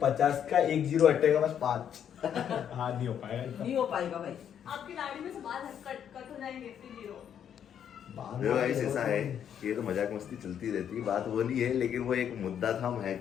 50 का 1 0 हटेगा बस 5 हाँ नहीं हो पाएगा नहीं हो पाएगा भाई। आपकी लाड़ी में से बाल कट हो जाएंगे, फिर जीरो। देखो गाइस ऐसा है कि ये तो मजाक मस्ती चलती रहती है, बात वो नहीं है, लेकिन वो एक मुद्दा था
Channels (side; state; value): right; quieter; 9.0 dB